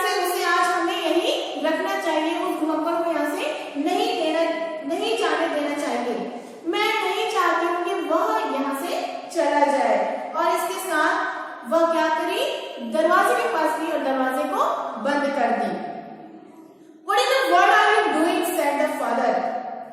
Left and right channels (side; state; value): both; identical; correlation 1.00